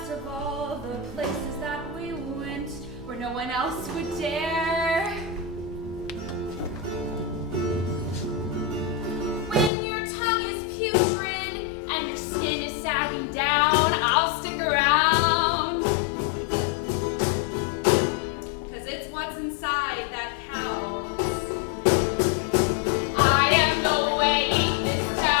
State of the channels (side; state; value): right; drops out; at 9.7 s